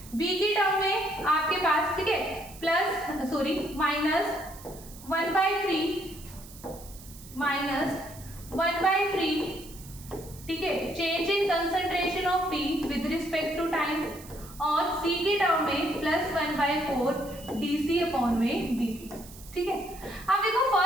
बी की टर्म में आपके पास, ठीक है, -1/3 ठीक है, change in concentration of T with respect to time, और सी की टर्म में +1/4 dC/dt, ठीक है। अब देखो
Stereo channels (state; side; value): noise; right; hiss, 18 dB below the sound